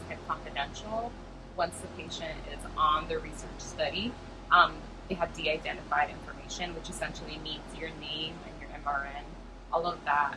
kept confidential. Once the patient is on the research study, they have de-identified information, which essentially means your name and your MRN. All of that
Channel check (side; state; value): both; identical; correlation 1.00